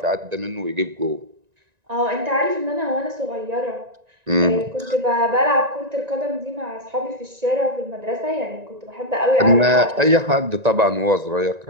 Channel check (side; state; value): left; late; 1.9 ms